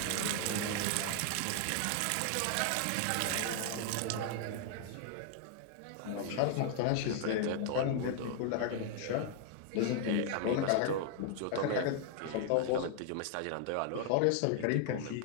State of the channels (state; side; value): different; both; correlation 0.00